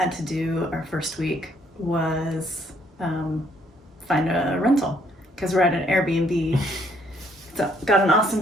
to do our first week was find a rental, because we're at an Airbnb. It's got an awesome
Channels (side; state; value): both; normal; correlation 0.67